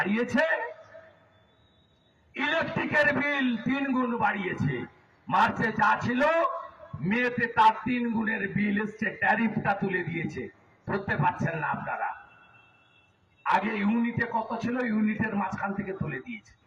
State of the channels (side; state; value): both; identical; correlation 1.00